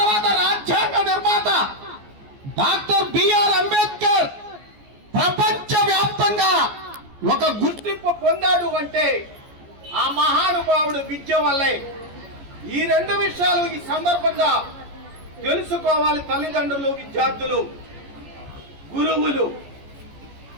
రాజ్యాంగ నిర్మాత డాక్టర్ బిఆర్ అంబేద్కర్ ప్రపంచ వ్యాప్తంగా ఒక గుర్తింపు పొందాడు అంటే ఆ మహానుభావుడు విద్య వల్లే. ఈ రెండు విషయాలు ఈ సందర్భంగా తెలుసుకోవాలి తల్లిదండ్రులు, విద్యార్థులు, గురువులు.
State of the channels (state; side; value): late; left; 14 ms